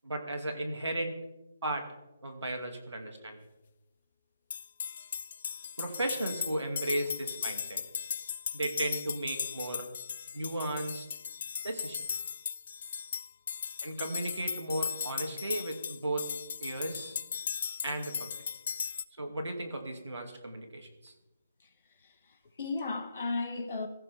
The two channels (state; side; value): inverted; both; correlation -0.77